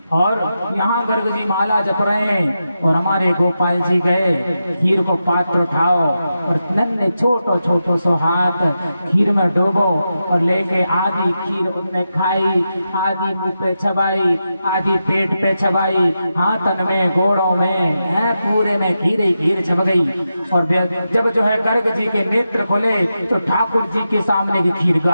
और यहाँ गर्ग जी माला जप रहे हैं और हमारे गोपाल जी गए, खीर को पात्र उठाओ और नन्हे छोटो छोटो सो हाथ खीर में डूबो और लेके आधी खीर उनने खाई, आधी मुंह पे चबाई, आधी पेट पे चबाई, हाथन में गोड़ों में है पूरे में खीर ही खीर चब गई। और जब जो है गर्ग जी के नेत्र खुले तो ठाकुर जी के सामने की खीर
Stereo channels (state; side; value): inverted; both; correlation -0.88